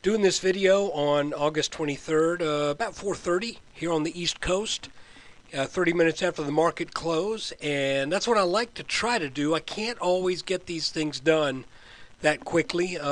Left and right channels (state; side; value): identical; both; correlation 1.00